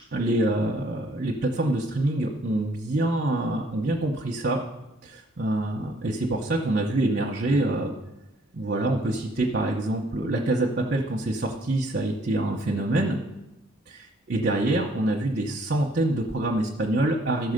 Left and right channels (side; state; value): both; normal; correlation 0.63